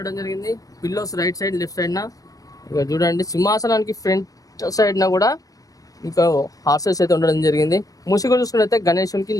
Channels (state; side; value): late; right; 0.17 ms